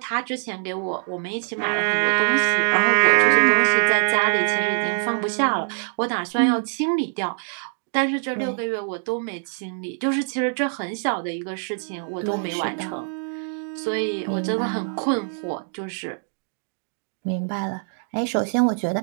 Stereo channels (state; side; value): silent; left; 63 dB below the other